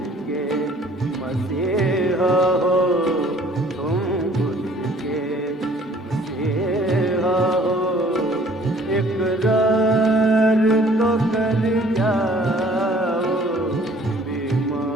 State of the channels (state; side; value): normal; both; correlation 0.56